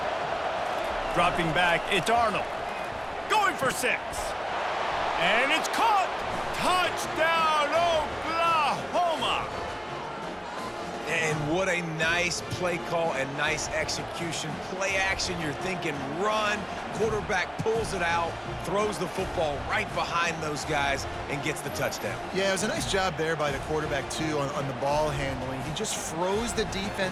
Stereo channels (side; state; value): both; identical; correlation 1.00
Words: Dropping back, it's Arnold. Going for 6. And it's caught. Touchdown, What a nice play call and nice execution. Play action, you're thinking run. Quarterback pulls it out, throws the football right behind those guys, and gets the touchdown. Yeah, it was a nice job there by the quarterback, too, on the ball handling. He just froze the